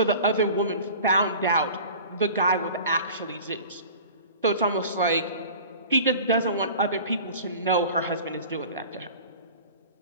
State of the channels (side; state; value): both; inverted; correlation -0.41